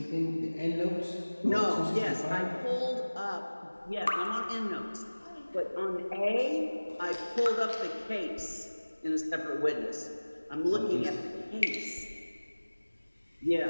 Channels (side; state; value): both; inverted; correlation -1.00